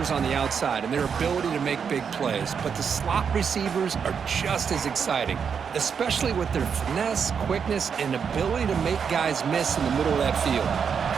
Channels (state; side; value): quieter; left; 6.7 dB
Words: on the outside and their ability to make big plays, but the slot receivers are just as exciting, especially with their finesse, quickness, and ability to make guys miss in the middle of that field.